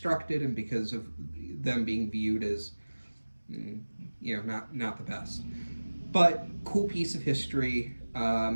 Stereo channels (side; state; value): both; inverted; correlation -1.00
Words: and because of them being viewed as not the best. But cool piece of history,